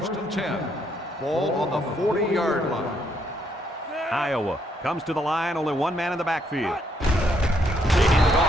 and 10. Ball on the 40-yard line. Iowa comes to the line, only one man in the backfield. They hand it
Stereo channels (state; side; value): normal; both; correlation 0.72